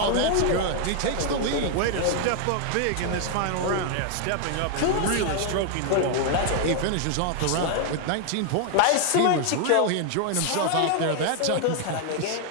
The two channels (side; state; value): both; different; correlation 0.00